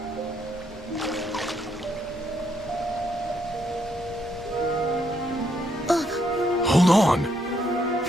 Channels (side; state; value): both; normal; correlation 0.74